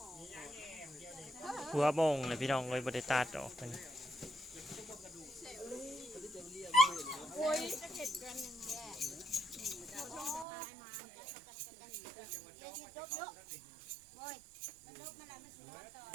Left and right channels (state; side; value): drops out; left; at 10.5 s